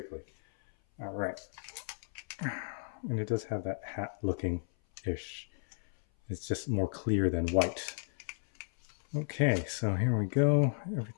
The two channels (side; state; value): right; silent; 55 dB below the other